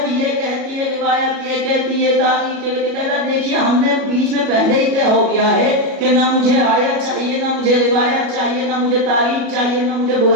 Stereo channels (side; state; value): left; late; 37 ms